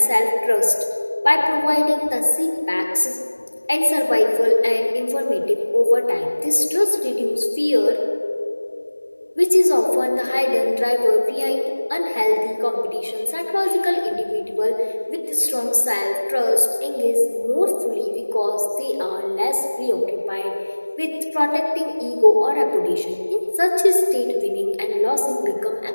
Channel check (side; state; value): both; inverted; correlation -1.00